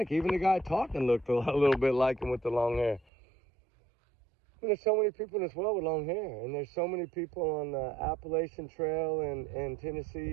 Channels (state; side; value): drops out; left; at 3.0 s